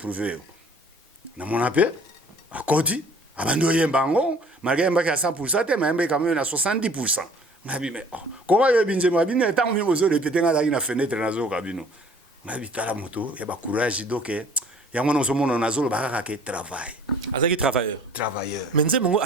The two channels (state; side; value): normal; both; correlation 0.52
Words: na mona pe akoti abandi oyemba ngo malgré mbaki à 100% te mais quand même na 70%. Ngabi me comment yo binzembo abine tant mi bozo répéter nga na fenêtre na zo kabino ngabi tala moto ya ba courage donc ya mona so mona na zo ba ka ke travail azaki travailleur mais nzembo